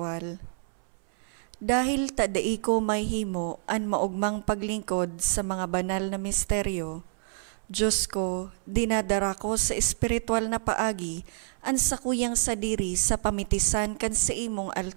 Dahil tadai ko may himo an maugmang paglingkod sa mga banal na misteryo, Diyos ko, dinadara ko sa espiritual na paagi an sakuyang sadiri sa pamitisan kan sa imong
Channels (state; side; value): silent; left; 59 dB below the other